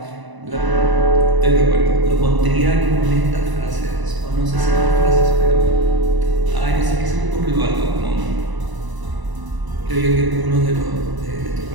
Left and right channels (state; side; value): late; left; 1.0 ms